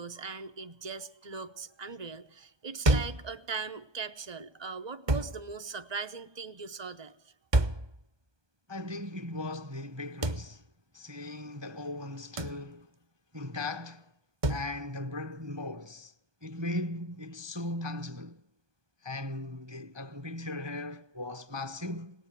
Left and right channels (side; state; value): left; late; 1.2 ms